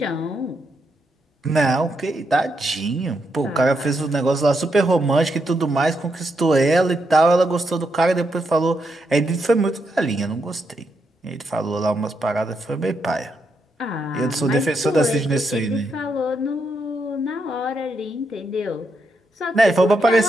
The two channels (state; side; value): normal; both; correlation 0.81